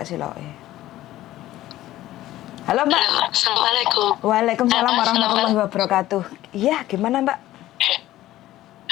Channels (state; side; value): quieter; right; 14.9 dB